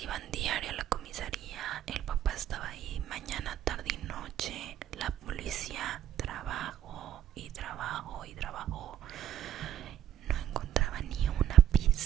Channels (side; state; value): left; quieter; 10.7 dB